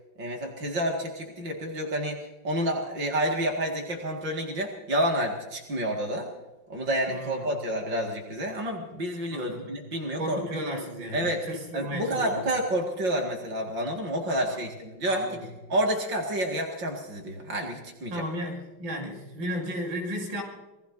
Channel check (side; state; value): left; late; 5.6 ms